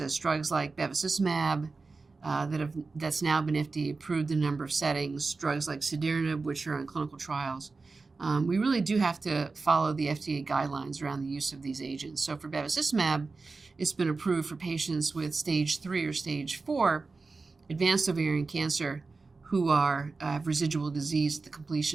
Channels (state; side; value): quieter; left; 4.0 dB